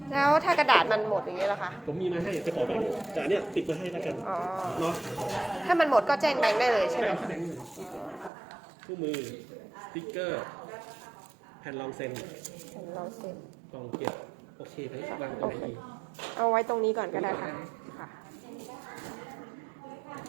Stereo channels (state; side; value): drops out; left; at 8.3 s